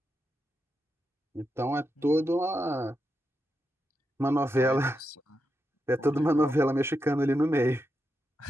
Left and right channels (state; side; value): normal; both; correlation 0.86